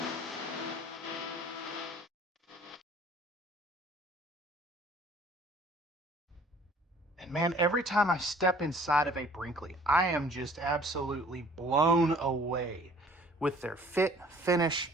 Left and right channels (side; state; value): both; normal; correlation 0.53